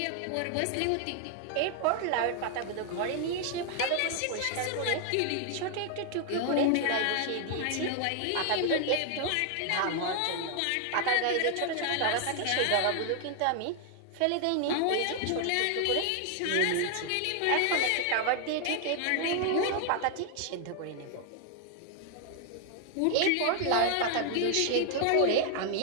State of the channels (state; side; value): different; both; correlation 0.00